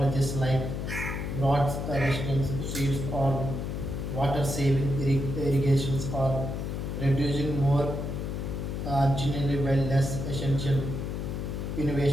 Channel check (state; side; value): noise; left; hum, 4 dB below the sound